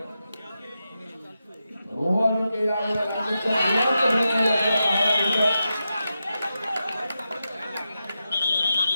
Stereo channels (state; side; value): inverted; both; correlation -0.89